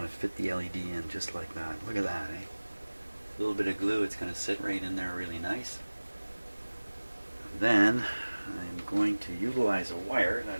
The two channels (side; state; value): both; inverted; correlation -1.00